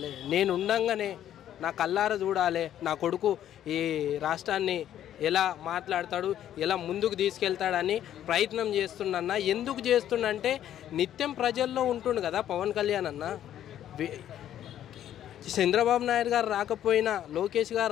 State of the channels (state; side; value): quieter; right; 11.1 dB